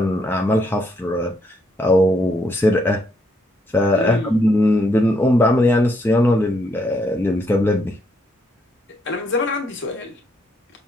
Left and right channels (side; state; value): both; normal; correlation 0.74